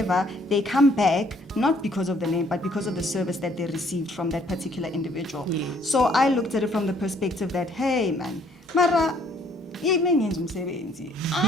they come back not because of the name, but because of the service that they received from that particular individual. Yes. So I looked at it from the perspective that, hey, man, Mara,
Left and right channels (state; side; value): normal; both; correlation 0.63